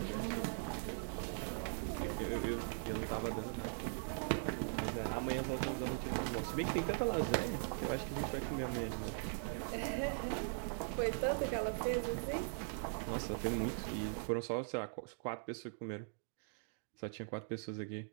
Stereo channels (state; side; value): silent; left; digital silence